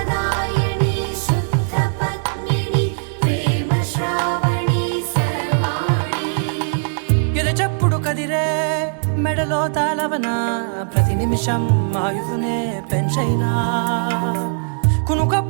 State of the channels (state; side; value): silent; left; digital silence